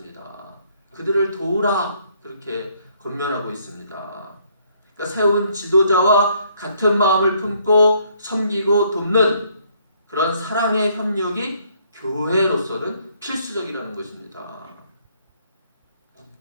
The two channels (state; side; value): inverted; both; correlation -0.67